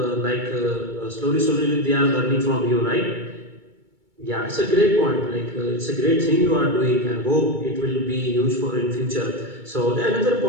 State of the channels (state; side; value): late; left; 2.3 ms